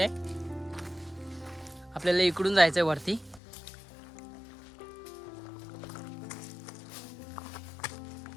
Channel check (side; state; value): right; drops out; at 3.4 s